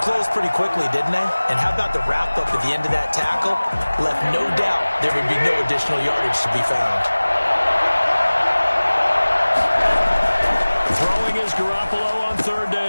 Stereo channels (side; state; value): both; inverted; correlation -1.00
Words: pretty quickly, didn't they? And how about the wrap-up at the end of that tackle? Left no doubt there would be no additional yardage to be found. Throwing is Garoppolo on third